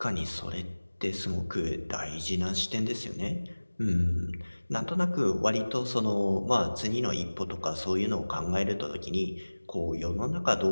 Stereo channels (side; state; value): both; inverted; correlation -1.00